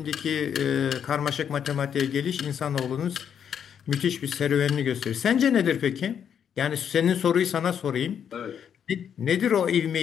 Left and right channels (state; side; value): quieter; right; 8.3 dB